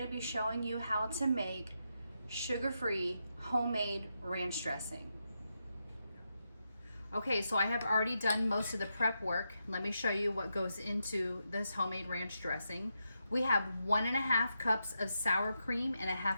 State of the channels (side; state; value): both; inverted; correlation -0.85